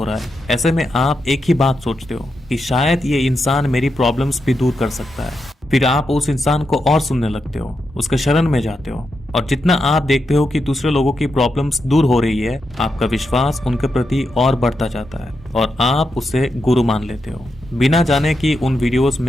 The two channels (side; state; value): both; normal; correlation 0.85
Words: रहा है। ऐसे में आप एक ही बात सोचते हो कि शायद ये इंसान मेरी प्रॉब्लम्स भी दूर कर सकता है। फिर आप उस इंसान को और सुनने लगते हो, उसके शरण में जाते हो, और जितना आप देखते हो कि दूसरे लोगों की प्रॉब्लम्स दूर हो रही है, आपका विश्वास उनके प्रति और बढ़ता जाता है और आप उसे गुरु मान लेते हो, बिना जाने कि उन वीडियोस